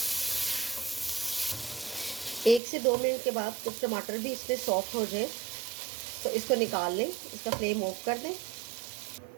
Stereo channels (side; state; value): left; drops out; at 2.6 s